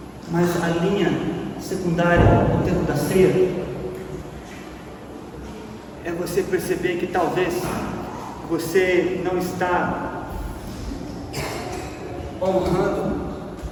mas a linha secundária no tempo da ceia é você perceber que talvez você não está honrando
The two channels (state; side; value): identical; both; correlation 1.00